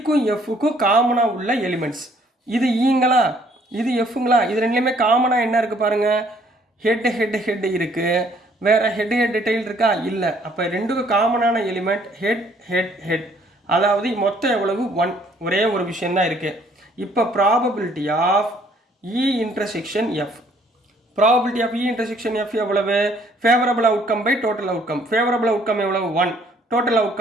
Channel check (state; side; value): normal; both; correlation 0.62